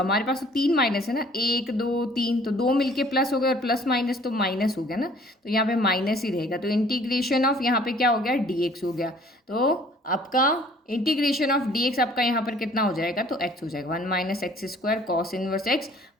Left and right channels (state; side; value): normal; both; correlation 0.55